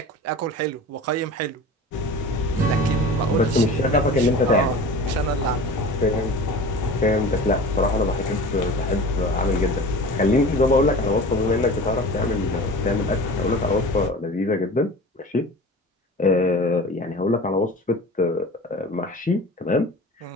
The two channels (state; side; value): normal; both; correlation 0.37